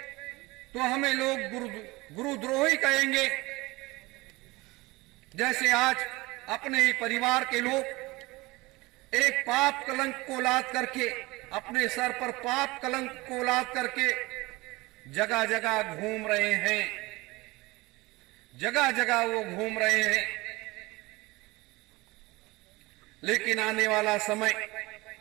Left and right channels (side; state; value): left; quieter; 22.0 dB